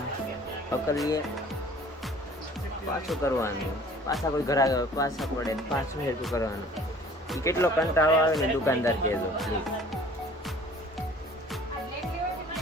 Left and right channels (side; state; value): both; normal; correlation 0.50